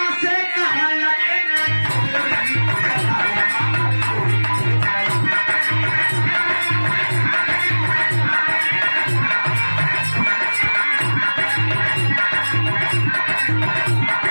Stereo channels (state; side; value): inverted; both; correlation -1.00